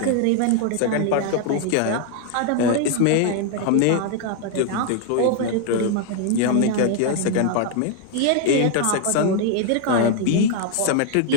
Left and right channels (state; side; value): different; both; correlation 0.00